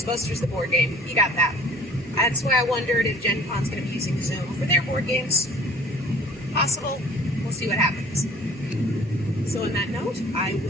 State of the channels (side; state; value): both; normal; correlation 0.50